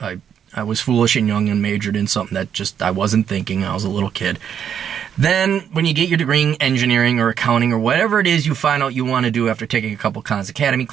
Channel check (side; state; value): left; quieter; 8.5 dB